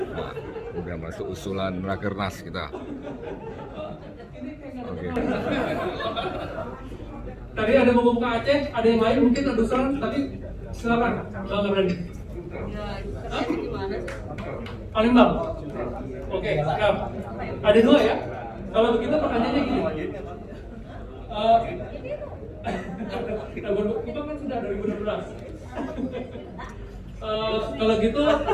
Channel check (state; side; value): identical; both; correlation 1.00